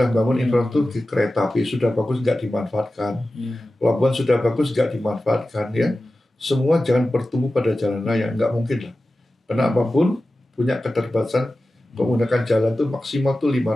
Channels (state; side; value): normal; both; correlation 0.94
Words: bangun infrastruktur kereta api sudah bagus nggak dimanfaatkan, pelabuhan sudah bagus nggak dimanfaatkan ya. Semua jangan bertumbuh pada jalan raya, nggak mungkin lah. Karena apapun punya keterbatasan, menggunakan jalan tuh maksimal tuh